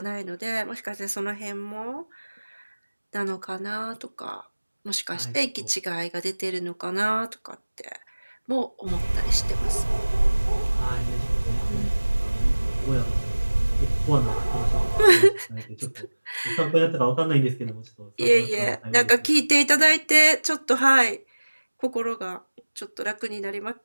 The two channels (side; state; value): both; inverted; correlation -1.00